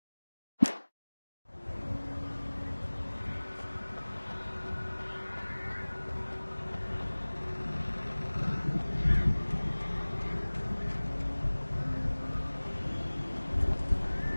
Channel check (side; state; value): both; inverted; correlation -1.00